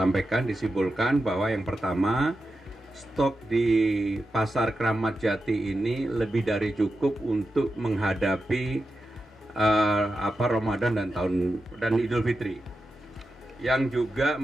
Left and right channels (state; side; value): normal; both; correlation 0.90